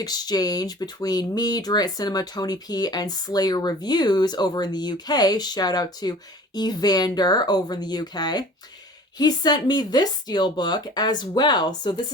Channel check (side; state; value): both; normal; correlation 0.44